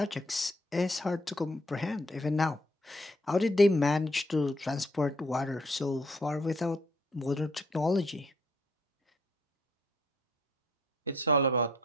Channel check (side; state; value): both; normal; correlation 0.65